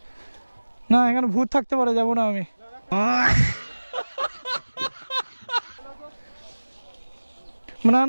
না এখানে ভূত থাকতে পারে যাবো না আমি না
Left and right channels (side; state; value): both; inverted; correlation -1.00